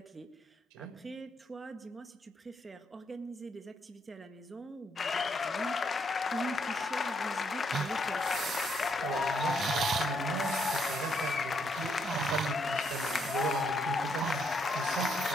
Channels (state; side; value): normal; both; correlation 0.74